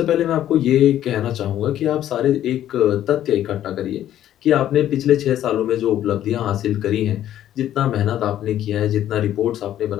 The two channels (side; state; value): right; quieter; 11.8 dB